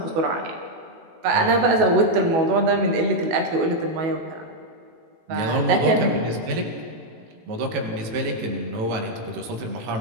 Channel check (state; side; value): late; left; 18 ms